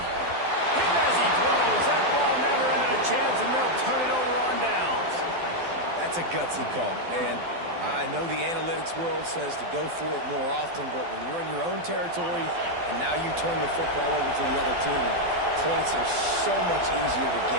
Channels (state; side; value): late; left; 12 ms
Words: as he throws. That ball never had a chance, and they'll turn it over on downs. That's a gutsy call, and I know the analytics world says to go for it more often, but when you're in your own territory and now you turn the football over to the other team, points are so much easier to